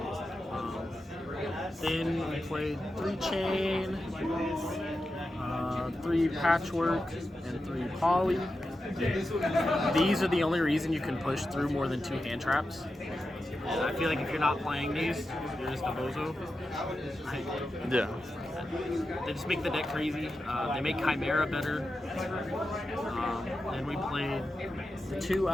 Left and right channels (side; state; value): both; normal; correlation 0.90